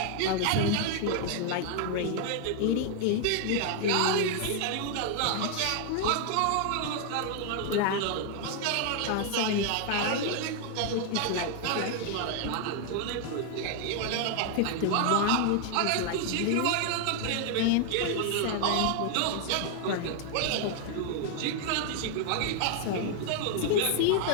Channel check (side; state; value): both; different; correlation 0.00